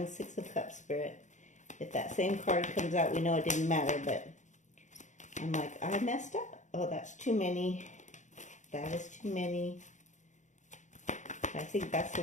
6 of Cups, Spirit. If that same card comes out, we know it didn't matter, but I'm like, I messed up. Oh, that's too many. That is too many. I think that's the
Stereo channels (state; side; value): late; right; 0.35 ms